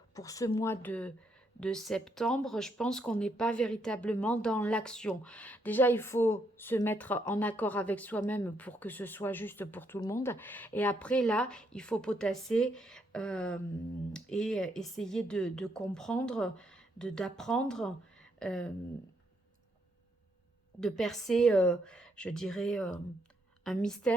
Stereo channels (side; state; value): both; normal; correlation 0.75